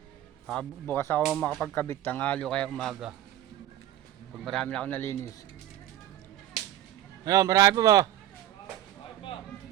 Bukas ako makapagkabit, tanghalo kaya umaga. Pag marami na ako nalinis. Ayun, marami pa ba?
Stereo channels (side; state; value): left; quieter; 12.6 dB